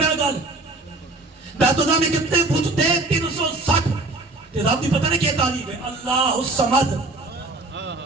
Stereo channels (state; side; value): quieter; left; 3.1 dB